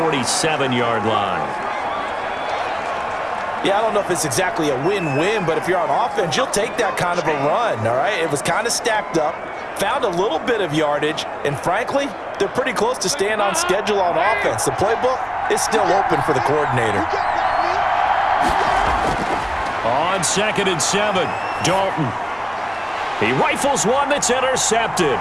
line. Yeah, I don't know if it's exactly a win-win, but if you're on offense, you'll take that kind of a run, all right? It was kind of stacked up, found a little bit of yardage, and frankly, they're pretty close to staying on schedule on offense. The playbook is still open for the coordinator. On 2nd and 7, Dalton. He rifles one that's intercepted.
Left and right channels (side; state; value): both; identical; correlation 1.00